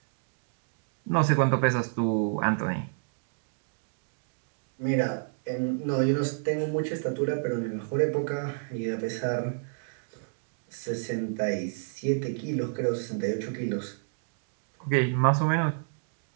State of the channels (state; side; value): silent; left; digital silence